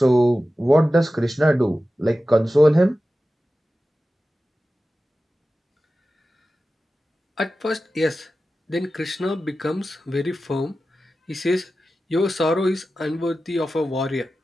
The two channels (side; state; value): both; normal; correlation 0.94